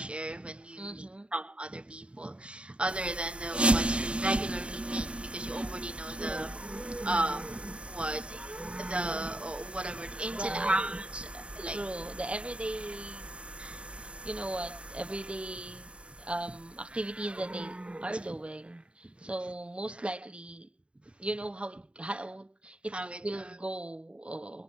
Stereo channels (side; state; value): left; late; 0.057 ms